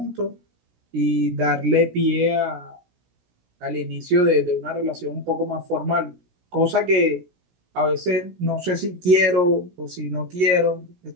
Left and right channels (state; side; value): late; left; 17 ms